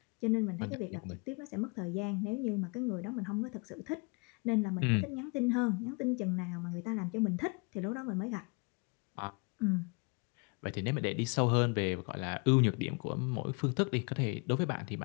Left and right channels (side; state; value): right; quieter; 32.1 dB